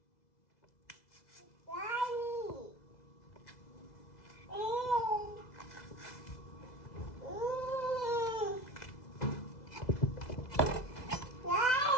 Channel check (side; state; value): right; late; 2.0 ms